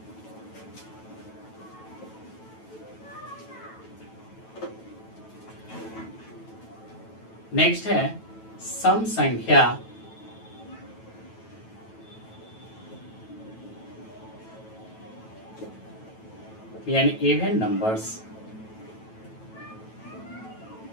नेक्स्ट है सम संख्या यानी इवन नंबर्स।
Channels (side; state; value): right; late; 9.1 ms